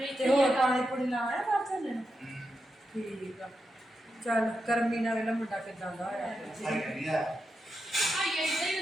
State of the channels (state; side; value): normal; both; correlation 0.87